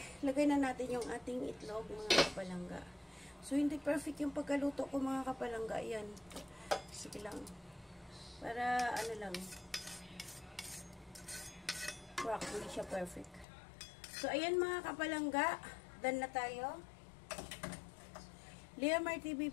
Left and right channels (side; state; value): right; drops out; at 13.5 s